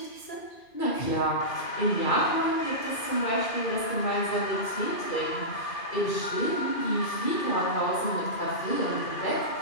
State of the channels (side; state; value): right; late; 2.4 ms